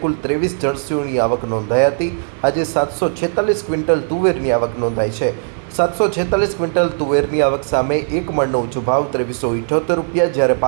કુલ 23 જર્સીઓની આવક નોંધાઈ હતી। આજે 746 ક્વિન્ટલ તુવેરની આવક નોંધાઈ છે। 746 ક્વિન્ટલ તુવેરની આવક સામે એક મણનો ઊંચો ભાવ 2378 રૂપિયા, જ્યારે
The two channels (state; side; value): silent; left; 61 dB below the other